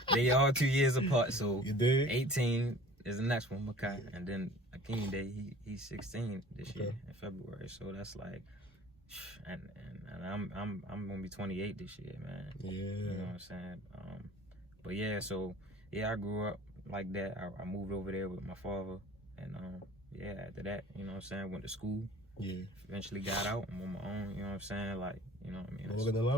They all 2 years apart, so 18 is the next one, Makai, and then Akeem Day, he's 16 this year in February. So that's like, and I'm gonna be 28 this year, man. Yeah, you know what I'm saying. But yeah, so yeah, I grew up like that. I moved over there with my father, and yeah, after that, you know what I'm saying, went to school. Yeah. Eventually got out. I'm on my own, you know what I'm saying? Like, you know what I mean? Morgan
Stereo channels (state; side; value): normal; both; correlation 0.46